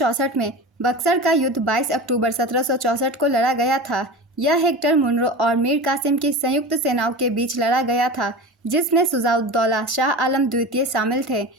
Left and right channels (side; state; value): both; normal; correlation 0.30